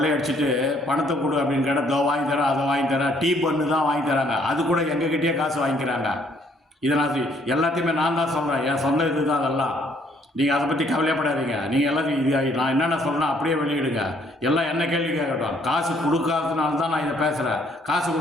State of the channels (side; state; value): both; normal; correlation 0.65